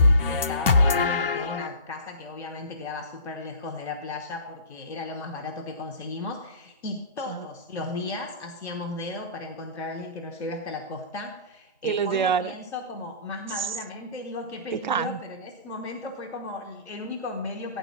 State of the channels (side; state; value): both; inverted; correlation -0.37